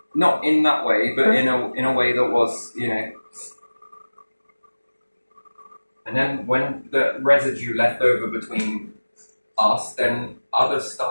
Not in that way, but in a way that was, you know. And then when the residue left over between us, then others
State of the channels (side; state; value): both; inverted; correlation -1.00